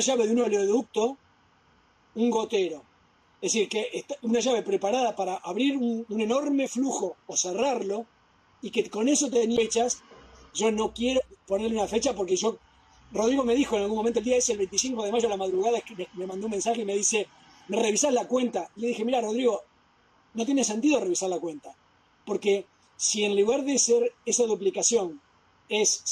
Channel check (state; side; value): identical; both; correlation 1.00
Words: de un oleoducto un gotero. Es decir, que una llave preparada para abrir un enorme flujo o cerrarlo, y que con eso tenía fechas. Yo no quiero ponerle una fecha porque Rodrigo me dijo en algún momento, el día ese, el 25 de mayo a la madrugada, me mandó un mensaje y me dice, ¿me revisás la cuenta? Y le dije, mira, Rodrigo, no tiene sentido revisar la cuenta, porque si en lugar de ser esa duplicación es